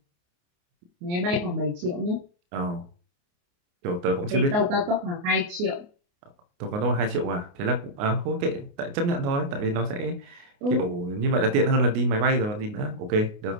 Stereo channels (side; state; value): left; late; 28 ms